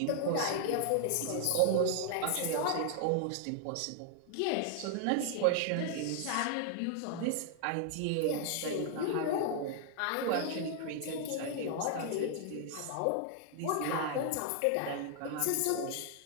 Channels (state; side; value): different; both; correlation 0.00